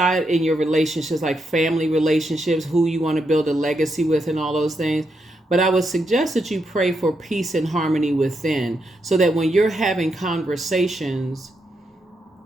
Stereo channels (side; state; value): both; normal; correlation 0.82